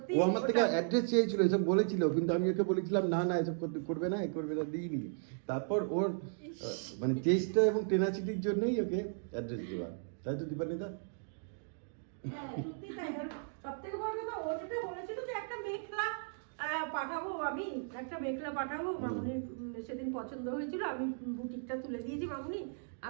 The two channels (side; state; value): left; silent; digital silence